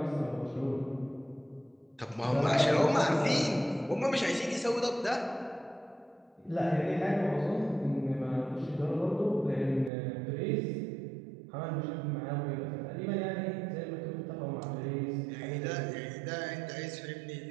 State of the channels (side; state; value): left; drops out; at 9.9 s